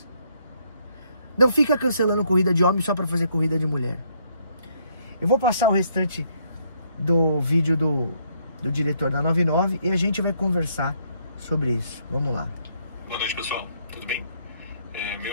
Não fica cancelando corrida de homem só para fazer corrida de mulher. Eu vou passar o restante do vídeo do diretor da 99 e a gente vai conversar sobre isso. Vamos lá. Boa noite, pessoal. Tudo bem?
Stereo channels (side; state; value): both; inverted; correlation -0.70